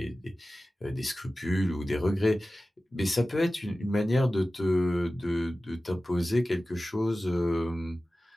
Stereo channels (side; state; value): both; normal; correlation 0.96